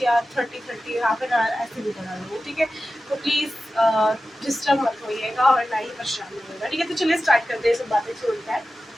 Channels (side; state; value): both; normal; correlation 0.94